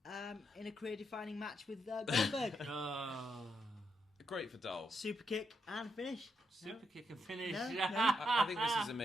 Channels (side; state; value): both; normal; correlation 0.80